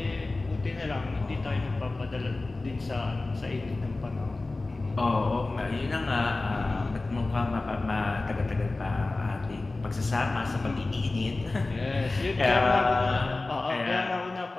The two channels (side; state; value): right; quieter; 3.2 dB